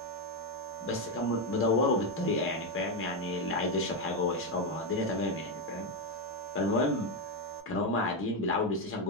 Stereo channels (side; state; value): both; normal; correlation 0.06